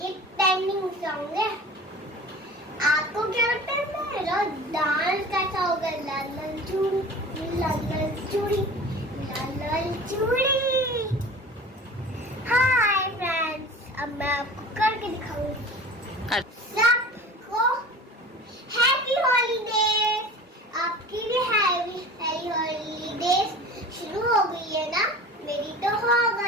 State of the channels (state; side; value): normal; both; correlation 0.39